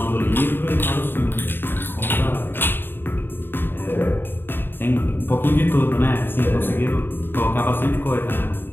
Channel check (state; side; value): late; right; 0.098 ms